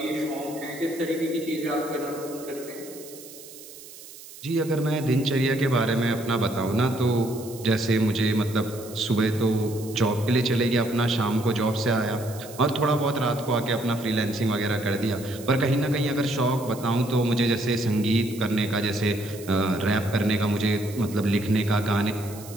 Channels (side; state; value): right; noise; hiss, 17 dB below the sound